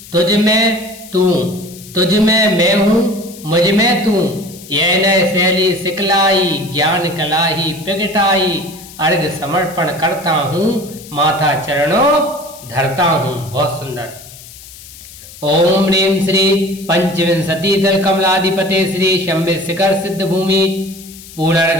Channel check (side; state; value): left; noise; hiss, 18 dB below the sound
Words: तुझ में तू तुझ में मैं हूं मुझ में तू। यह नय शैली सिखलाई ज्ञान कला ही प्रगटाई। अर्घ समर्पण करता हूं माथा चरणों धरता हूं। बहुत सुंदर। ओम ह्रीं श्री पंचविंशति दल कमलाधिपते श्री शंभे शिखर सिद्ध भूमि